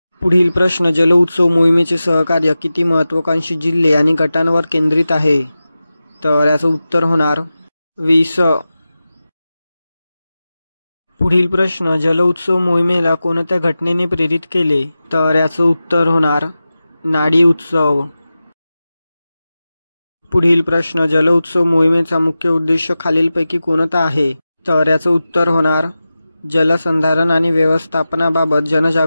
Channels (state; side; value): inverted; both; correlation -0.94